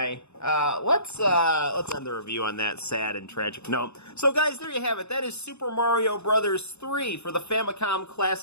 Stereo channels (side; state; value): right; late; 0.81 ms